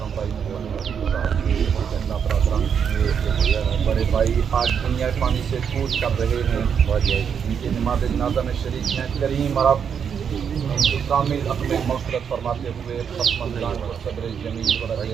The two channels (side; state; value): left; quieter; 7.3 dB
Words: भाई मोहम्मद बड़े भाई आज दुनिया पानी से कूच कर रहे हैं। इनकी नमाज़ जनाज़ा में शरीक हैं। करीम रब इनकी कामिल अपने मग़फ़िरत फरमाते हुए ख़त्म को सदर जमील वरज़